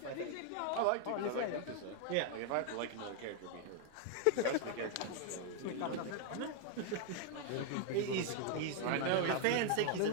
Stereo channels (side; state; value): both; different; correlation 0.00